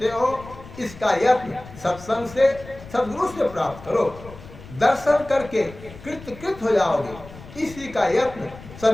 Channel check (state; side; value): noise; left; rumble, 17 dB below the sound